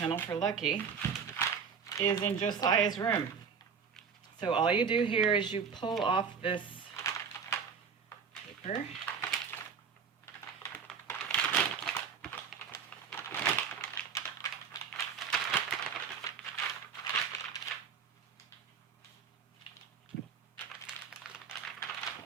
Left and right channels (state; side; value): quieter; left; 6.4 dB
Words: for Lucky, is in Josiah's room. So all you do here is you pull off this paper. It